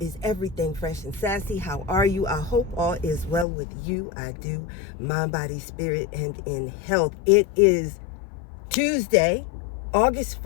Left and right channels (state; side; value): drops out; right; at 3.5 s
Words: Everything Fresh and Sassy. How are you? I hope all is well with you. I do. Mind, body, spirit, and in health. It is Tuesday, August